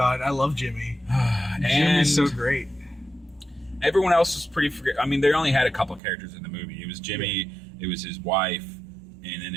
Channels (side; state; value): left; drops out; at 6.0 s